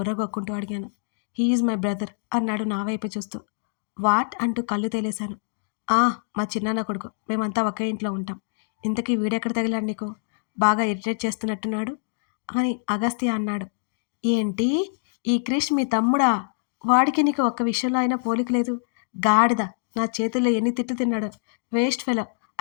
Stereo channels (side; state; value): right; silent; digital silence